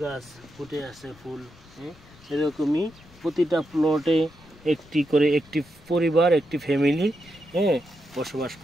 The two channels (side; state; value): left; noise; rumble, 24 dB below the sound